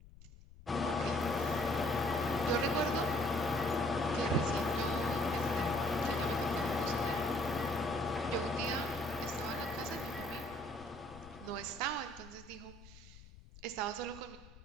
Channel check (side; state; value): left; noise; rumble, 20 dB below the sound